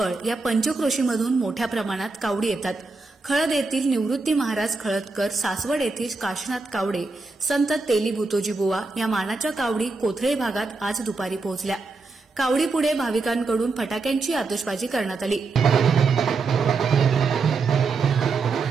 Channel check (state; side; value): quieter; left; 4.0 dB